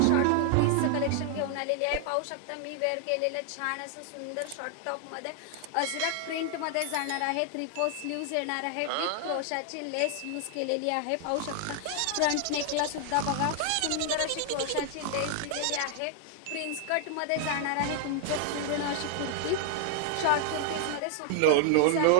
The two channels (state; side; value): different; both; correlation 0.00